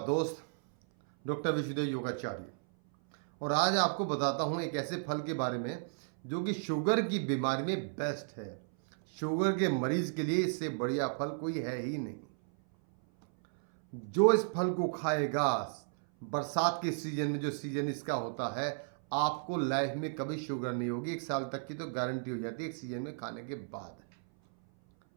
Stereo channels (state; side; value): silent; left; 55 dB below the other